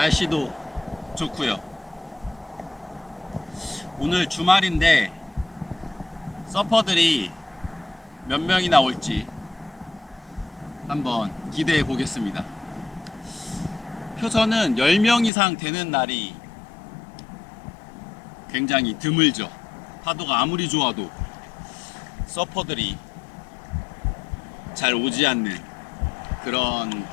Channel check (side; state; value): right; drops out; at 15.3 s